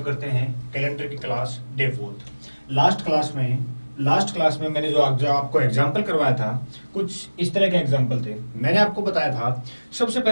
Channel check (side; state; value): both; inverted; correlation -1.00